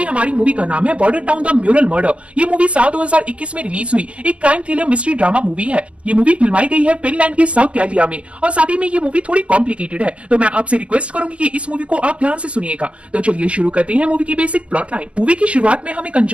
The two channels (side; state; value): left; late; 0.061 ms